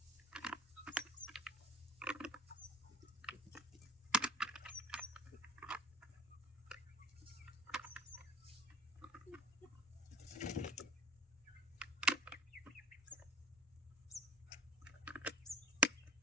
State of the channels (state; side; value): normal; both; correlation 0.46